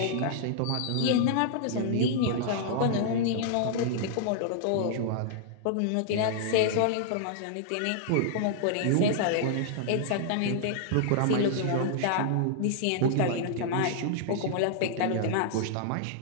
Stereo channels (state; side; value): different; both; correlation -0.01